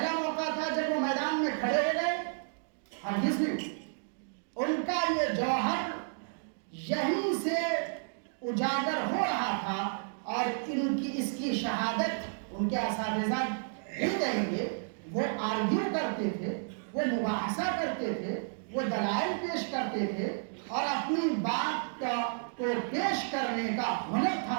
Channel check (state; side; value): silent; left; digital silence